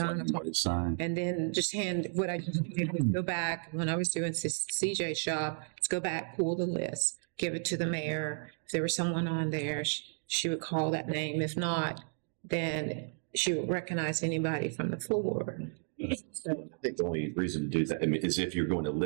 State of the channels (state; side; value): silent; left; 55 dB below the other